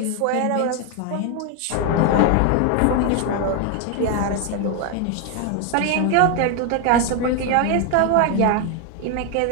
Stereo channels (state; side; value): different; both; correlation 0.01